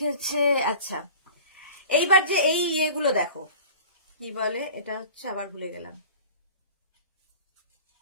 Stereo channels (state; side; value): inverted; both; correlation -0.41